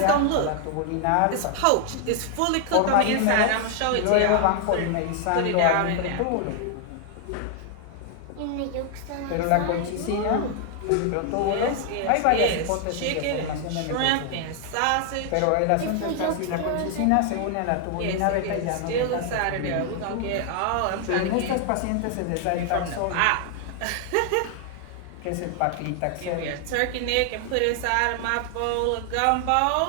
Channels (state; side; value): different; both; correlation 0.00